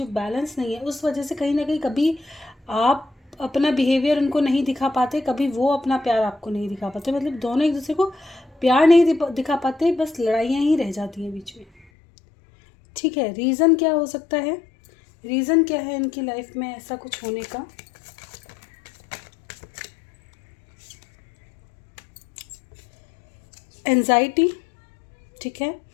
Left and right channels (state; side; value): drops out; right; at 11.9 s